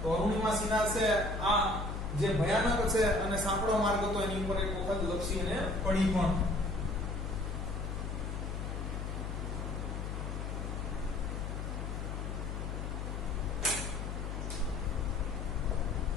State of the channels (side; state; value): left; noise; hum, 4 dB below the sound